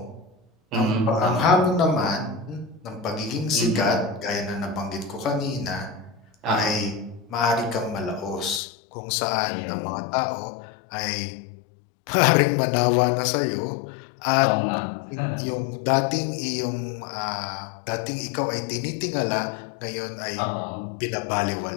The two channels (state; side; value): drops out; right; at 8.6 s